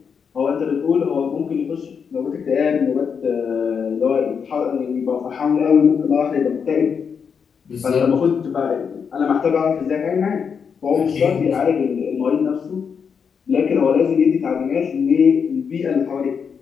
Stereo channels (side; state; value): right; quieter; 6.5 dB